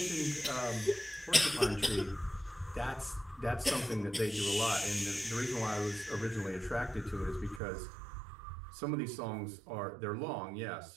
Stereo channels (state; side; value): drops out; left; at 7.6 s